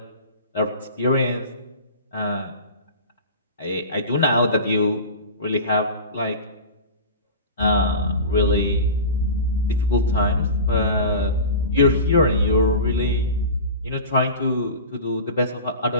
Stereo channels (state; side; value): inverted; both; correlation -0.32